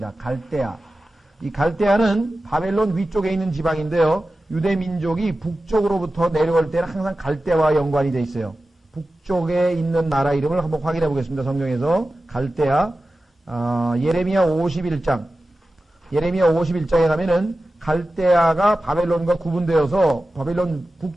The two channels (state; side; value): normal; both; correlation 0.94